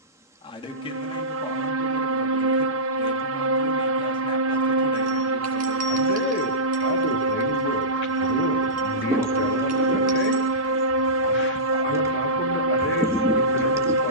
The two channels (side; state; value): both; normal; correlation -0.19